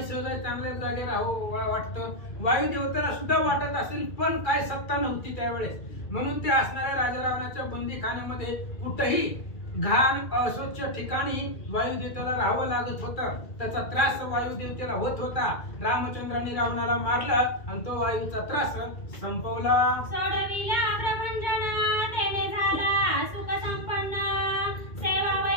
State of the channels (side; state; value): right; late; 2.4 ms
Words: सहज चांगल्या जागे राहावं वाटतं, वायू देवतेला सुद्धा वाटत असेल पण काय सत्ता नव्हती त्यावेळेस. म्हणून ते असणाऱ्या राजा रावणाच्या बंदीखान्यामध्ये कुठेही घाण अस्वच्छ ठिकाणी वायुदेवतेला राहावं लागत होतं. त्याचा त्रास वायुदेवतेला होत होता. रामचंद्रांनी रावणाला मारलं आणि तो वायूचा त्रास संपवला. सोडविला प्रभंजन तेने झाला सुख संपन्न